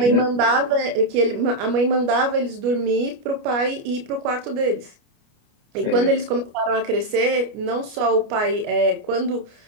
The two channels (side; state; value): left; late; 29 ms